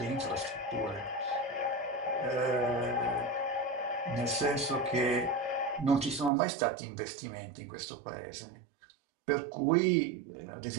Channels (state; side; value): drops out; left; at 6.3 s